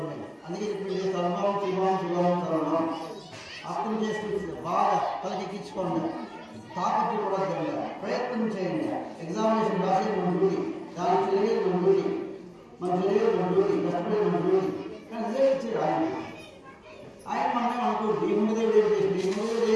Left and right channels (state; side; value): identical; both; correlation 1.00